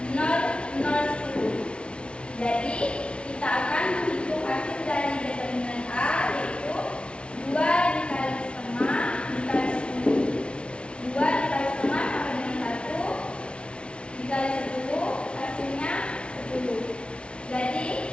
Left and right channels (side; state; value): right; late; 0.059 ms